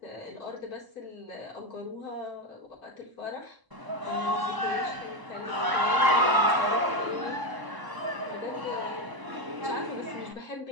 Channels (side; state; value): left; late; 1.0 ms